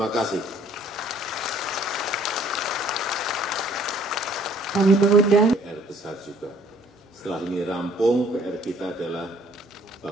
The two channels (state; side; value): normal; both; correlation 0.59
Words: kasih. Kami mengundang PR besar juga. Setelah ini rampung, PR kita adalah